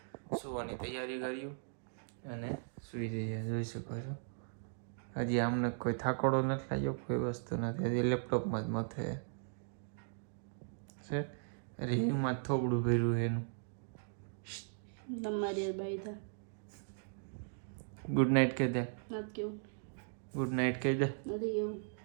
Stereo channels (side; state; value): left; silent; digital silence